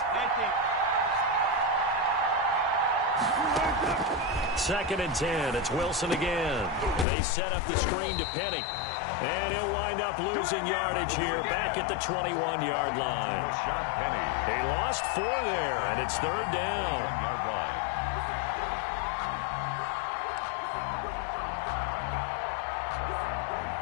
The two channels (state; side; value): drops out; right; at 7.1 s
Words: 2nd and 10. It's Wilson again. They set up the screen to Penny. And he'll wind up losing yardage here back at the 21-yard line. Rashad Penny. They lost 4 there, and it's 3rd down. 1-yard line.